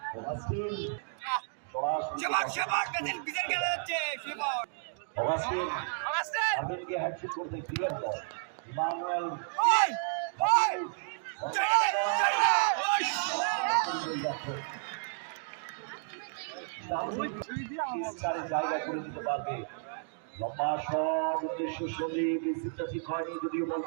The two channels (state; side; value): silent; left; digital silence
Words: হ্যাট্রিক করতে ক্লিয়ার বল, ইমানুয়েল জায়গা করে দিতে পারবে, লম্বা শট উদ্দেশ্য সন্দীপ, রিসিভটা ঠিক হয়নি, যদিও বল